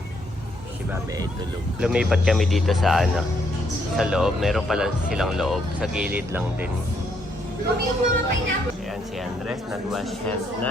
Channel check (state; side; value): normal; both; correlation 0.73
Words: Si Babe ay tulog. Lumipat kami dito sa sa loob. Meron pala silang loob. Sa gilid lang din. Ayan si Andres, nag-wash hands